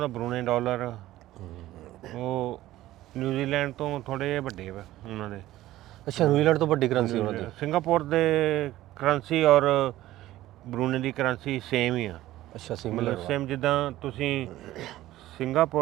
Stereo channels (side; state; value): left; quieter; 15.4 dB